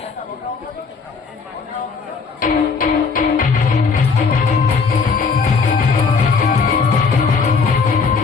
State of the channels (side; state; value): right; quieter; 5.0 dB